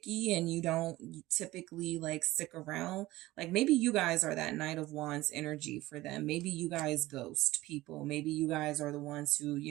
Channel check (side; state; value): left; quieter; 17.8 dB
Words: and you don't typically like stick around. Like maybe you guys are that Knight of Wands energy for them. Maybe you guys ghost people. Maybe you guys are the ones who,